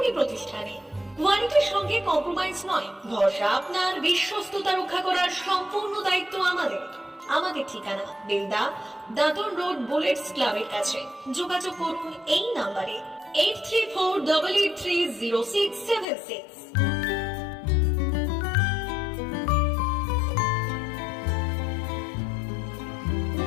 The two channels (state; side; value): drops out; right; at 16.1 s